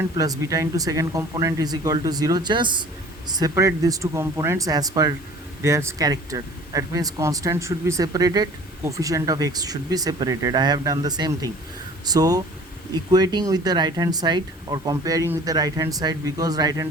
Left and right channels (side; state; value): both; normal; correlation 0.47